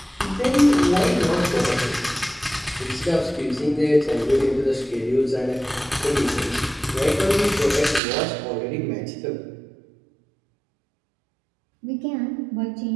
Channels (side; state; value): left; drops out; at 8.0 s